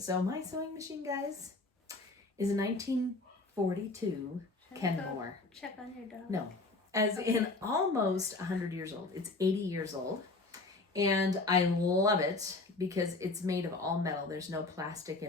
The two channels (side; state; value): right; quieter; 3.4 dB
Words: my sewing machine, guys, is a 1942 Kenmore. Check on your dog. No, as in almost 100 years old. It's 80 years old. And I love it because it's made of all metal. There's no plastic